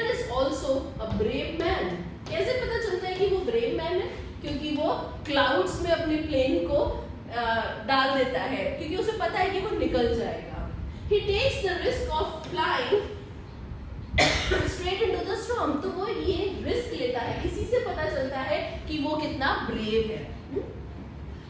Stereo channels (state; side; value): identical; both; correlation 1.00